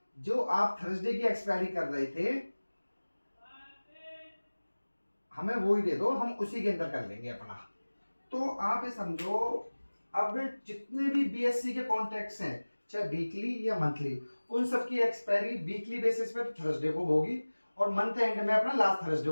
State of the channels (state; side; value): inverted; both; correlation -1.00